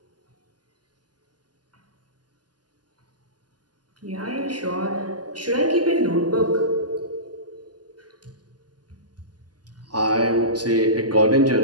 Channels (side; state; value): left; late; 0.70 ms